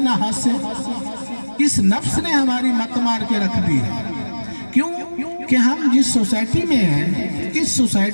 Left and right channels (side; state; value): both; inverted; correlation -1.00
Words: ہاسے۔ اس نفس نے ہماری مت مار کے رکھ دی ہے۔ کیوں کہ ہم جس سوسائٹی میں ہیں، اس